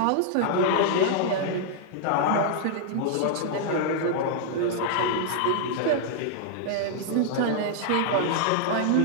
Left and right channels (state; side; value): different; both; correlation -0.01